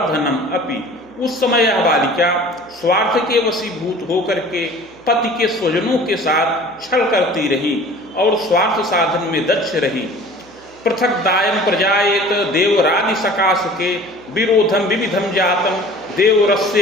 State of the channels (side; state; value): right; noise; hum, 29 dB below the sound